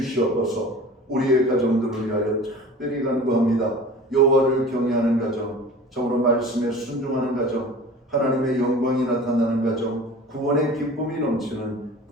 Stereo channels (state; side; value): normal; both; correlation 0.40